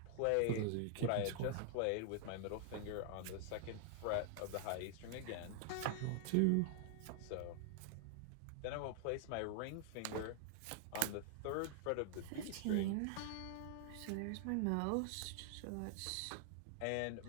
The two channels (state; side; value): different; both; correlation 0.00